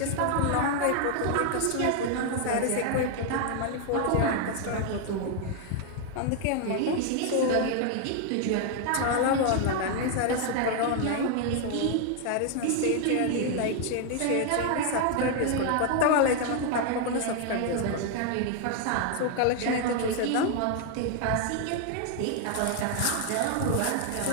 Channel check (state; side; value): different; both; correlation 0.00